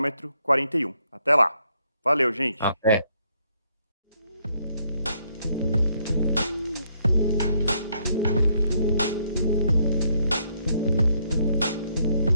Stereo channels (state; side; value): inverted; both; correlation -0.72